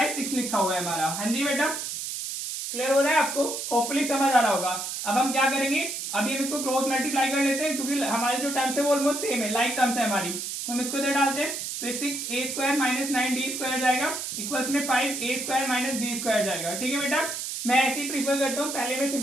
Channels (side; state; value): right; noise; hiss, 5 dB below the sound